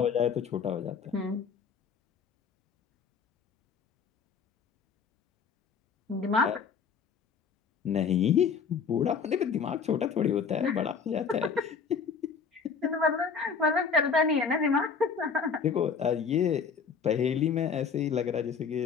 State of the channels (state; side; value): quieter; right; 5.9 dB